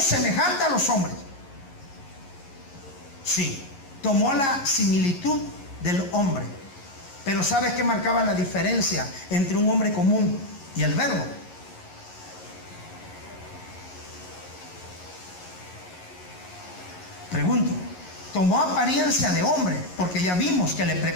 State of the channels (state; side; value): late; right; 11 ms